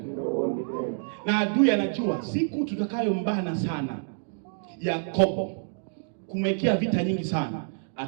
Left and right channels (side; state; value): left; silent; digital silence